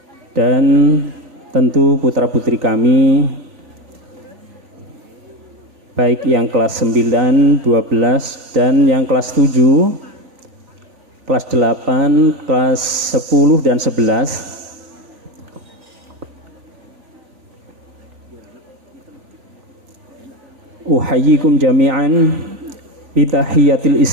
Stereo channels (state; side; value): late; left; 3.9 ms